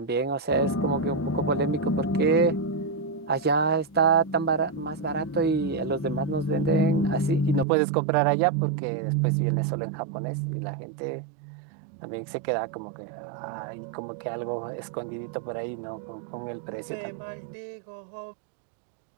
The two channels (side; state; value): left; drops out; at 7.7 s